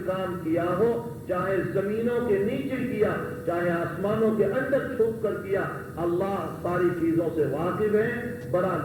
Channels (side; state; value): both; identical; correlation 1.00